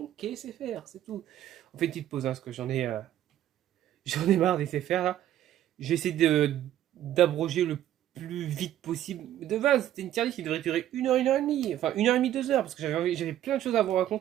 qu'est SFR, c'est tout. On fait une petite pause, hein, parce que j'en ai marre des SFR là. Je vais essayer d'abroger le plus vite possible. De base, c'était une tier list qui devrait durer 1 heure et demie, enfin 1 heure et demie, 2 heures, parce que j'avais plein de choses à vous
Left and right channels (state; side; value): quieter; left; 12.2 dB